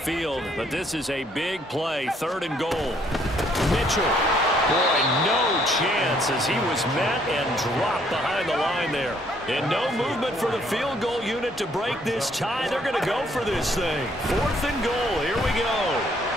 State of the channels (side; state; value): both; normal; correlation 0.66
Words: but this is a big play. 3rd and goal. Mitchell. Boy, no chance as he was met and dropped behind the line there. And no movement for the field goal unit to break this tie. They're going to go for this thing. 4th and goal. Here we go.